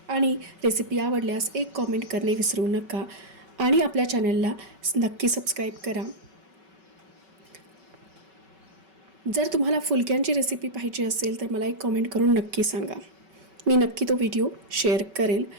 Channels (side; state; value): left; late; 5.3 ms